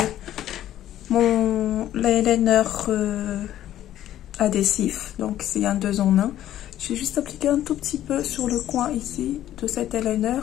mon eyeliner adhésif. Donc, c'est un 2 en 1. J'ai juste appliqué un tout petit peu sur le coin ici de cet eyeliner.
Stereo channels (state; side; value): quieter; right; 12.5 dB